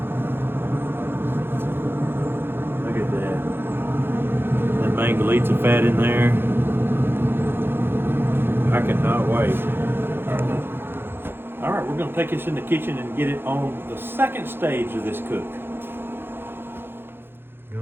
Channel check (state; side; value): late; left; 0.10 ms